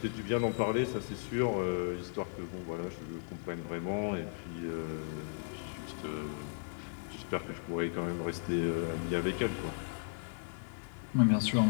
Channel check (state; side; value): silent; right; digital silence